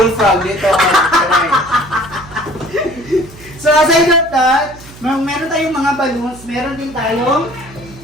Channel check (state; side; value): noise; right; hum, 20 dB below the sound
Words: dito. So aside from that, meron tayong mga balloons, meron din tayong